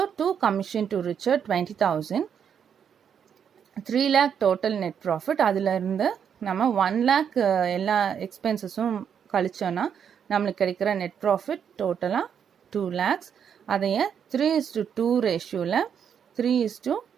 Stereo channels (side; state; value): left; quieter; 7.9 dB